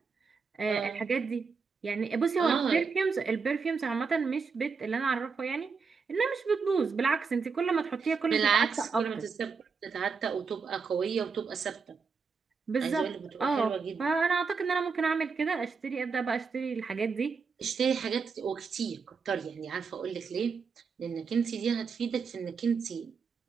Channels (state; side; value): quieter; left; 5.2 dB